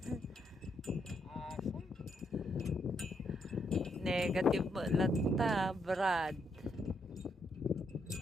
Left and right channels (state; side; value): normal; both; correlation 0.77